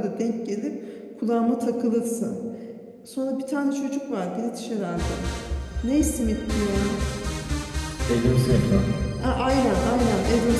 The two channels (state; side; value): identical; both; correlation 1.00